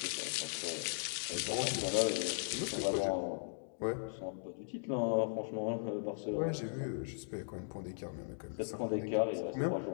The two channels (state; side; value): silent; right; digital silence